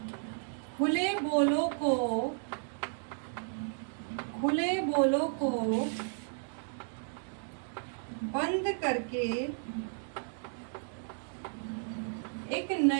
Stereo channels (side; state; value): left; silent; 55 dB below the other